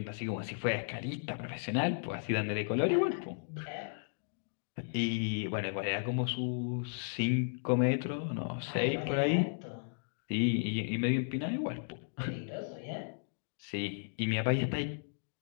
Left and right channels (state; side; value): silent; right; digital silence